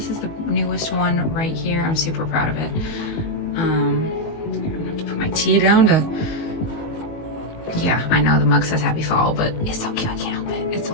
is the newest one right here. I'm super proud of it. I'm gonna have to put my tea down to... Yeah, I know the mug says happy fall, but it's so cute. I can't help it. It's a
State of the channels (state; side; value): late; right; 18 ms